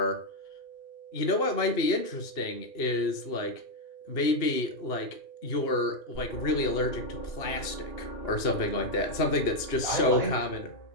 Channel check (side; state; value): right; late; 2.8 ms